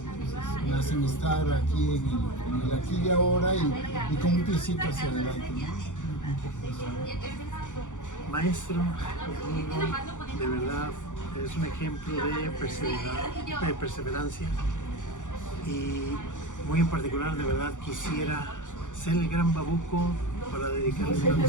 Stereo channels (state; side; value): late; right; 0.86 ms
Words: Me hacen estar aquí en el aquí y ahora y con un piecito hacia adelante, ¿no? Maestro, mi amigo, de verdad es un ejemplo de perseverancia y muy en particular, de verdad quisiera ser el gran babuco para dedicarle una